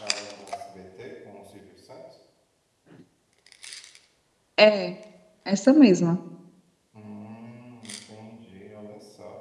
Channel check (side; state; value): both; identical; correlation 1.00